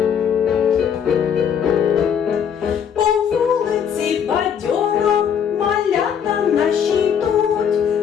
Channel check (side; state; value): right; quieter; 7.9 dB